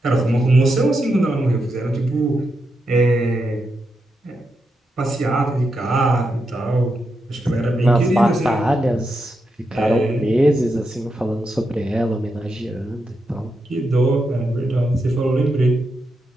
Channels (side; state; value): both; normal; correlation 0.85